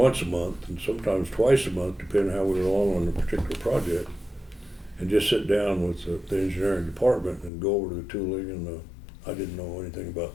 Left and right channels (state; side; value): drops out; right; at 7.5 s